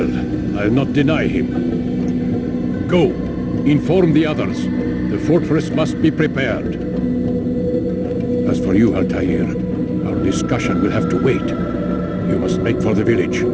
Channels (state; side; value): identical; both; correlation 1.00